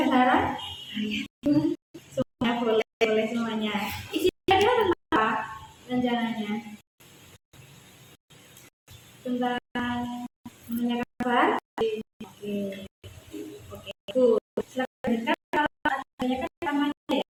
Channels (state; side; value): identical; both; correlation 1.00